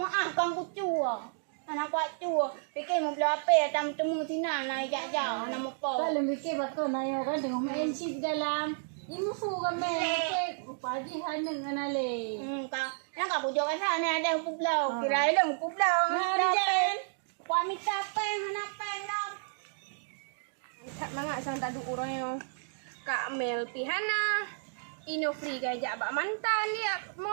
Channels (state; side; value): silent; left; digital silence